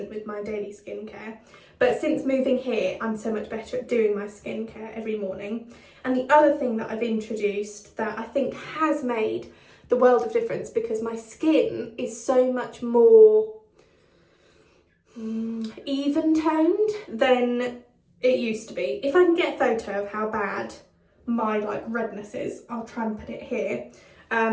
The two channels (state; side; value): identical; both; correlation 1.00